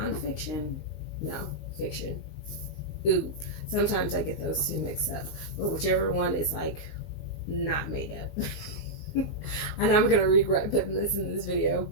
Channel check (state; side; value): late; right; 19 ms